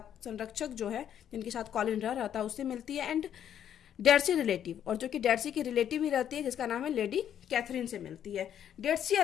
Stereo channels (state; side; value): quieter; right; 9.7 dB